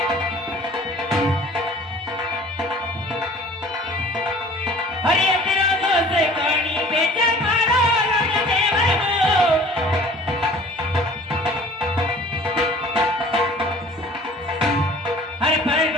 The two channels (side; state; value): both; normal; correlation 0.48